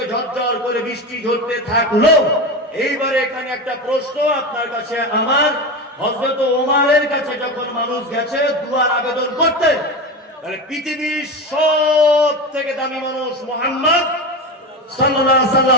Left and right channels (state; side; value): normal; both; correlation 0.21